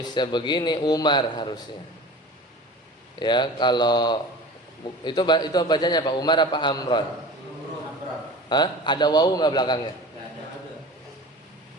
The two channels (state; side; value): normal; both; correlation 0.37